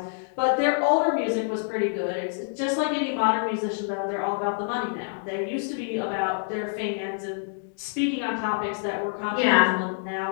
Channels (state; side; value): silent; right; digital silence